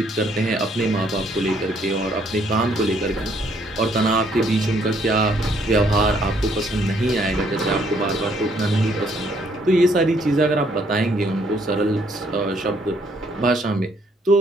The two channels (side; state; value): both; normal; correlation 0.67